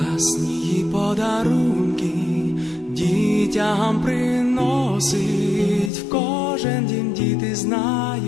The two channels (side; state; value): right; drops out; at 5.9 s